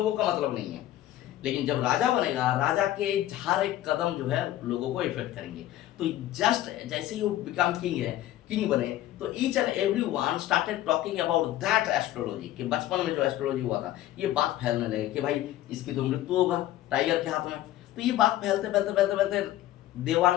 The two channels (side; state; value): right; quieter; 13.9 dB